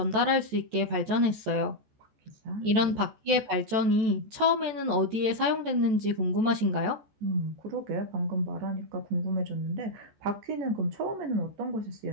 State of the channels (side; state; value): left; late; 14 ms